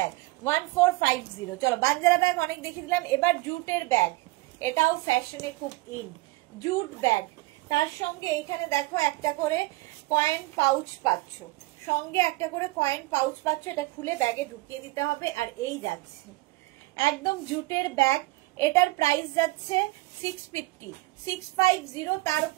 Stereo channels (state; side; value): quieter; left; 21.6 dB